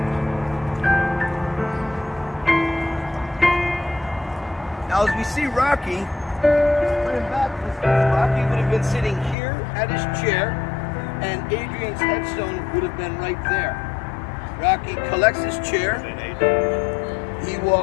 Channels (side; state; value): right; drops out; at 9.3 s